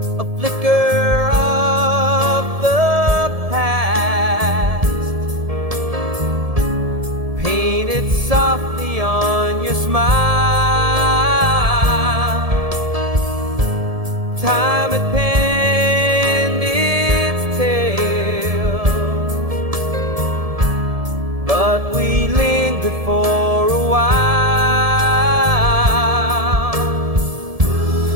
a flicker of the past, painted softly on your smile. Time had penned its tale, but we lingered for a while.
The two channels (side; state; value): left; late; 1.7 ms